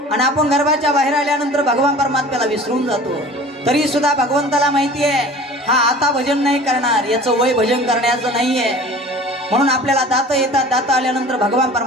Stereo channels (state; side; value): normal; both; correlation 0.43